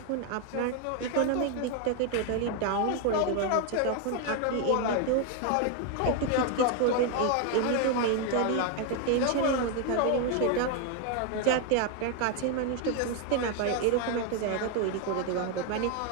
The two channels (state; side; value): different; both; correlation 0.01